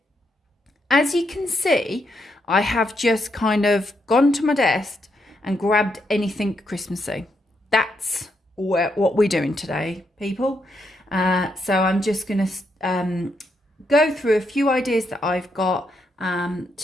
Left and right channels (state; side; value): normal; both; correlation 0.79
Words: As you can see, I have just kind of gone to my desk and grabbed anything Christmassy. That's what we're doing today, people. So I'm just going to go through a few ideas that I've got